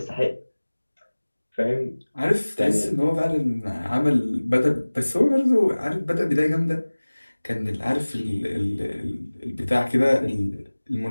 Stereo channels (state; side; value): inverted; both; correlation -1.00